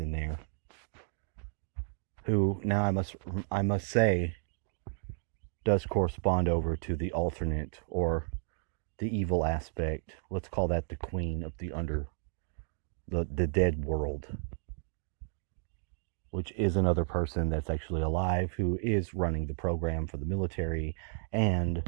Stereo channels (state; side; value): silent; left; 56 dB below the other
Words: there, who now I must say does correspond over to the alternate or the evil aspect. Let's call that the queen of the dead world, which is another person that's actually alive who is running the program for the military.